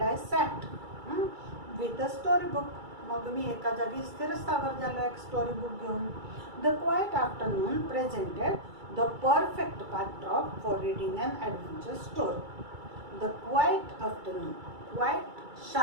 I sat with a story book. मग मी एका जागी स्थिरस्थावर झालो एक स्टोरी बुक घेऊन. The quiet afternoon presented the perfect backdrop for reading an adventure story. The quiet afternoon, quiet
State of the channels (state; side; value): late; left; 2.3 ms